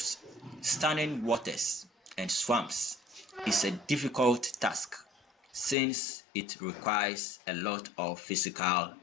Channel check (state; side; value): drops out; right; at 5.8 s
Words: standing waters, and swamps is a difficult task since it requires a lot of physical